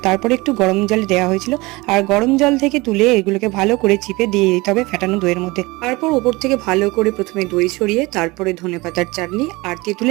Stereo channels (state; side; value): quieter; left; 23.0 dB